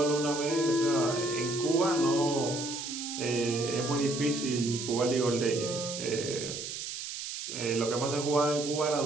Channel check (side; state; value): right; noise; hiss, 7 dB below the sound